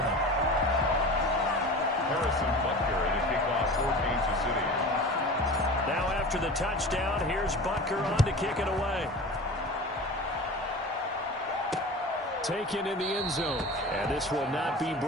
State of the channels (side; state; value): both; normal; correlation 0.35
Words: Harrison Butker in a kickoff for Kansas City. Now after the touchdown, here's Butker on to kick it away. Taken in the end zone. And this will not be